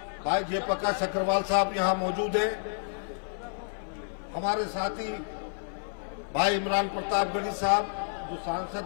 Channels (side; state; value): right; silent; 55 dB below the other